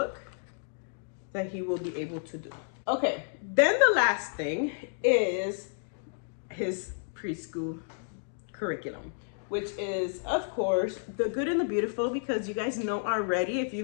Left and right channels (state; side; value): silent; right; digital silence